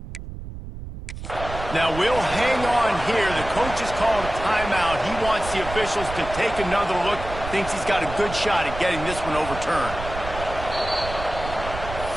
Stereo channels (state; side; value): noise; right; rumble, 10 dB below the sound